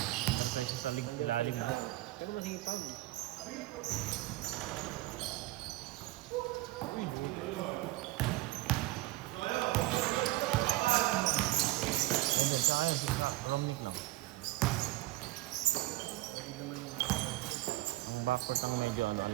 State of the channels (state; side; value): quieter; left; 18.4 dB